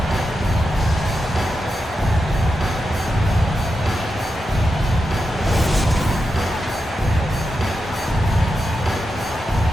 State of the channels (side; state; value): both; normal; correlation 0.88